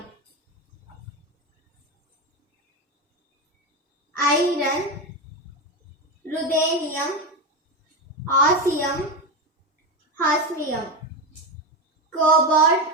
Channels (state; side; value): normal; both; correlation 0.15